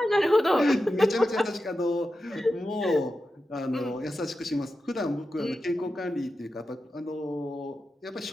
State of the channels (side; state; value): both; normal; correlation 0.91